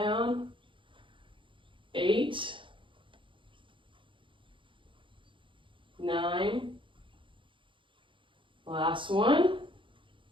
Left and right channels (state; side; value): late; left; 0.24 ms